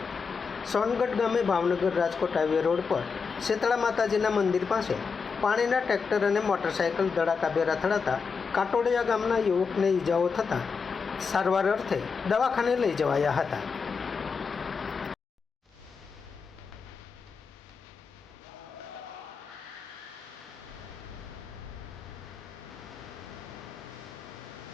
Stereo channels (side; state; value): right; quieter; 5.4 dB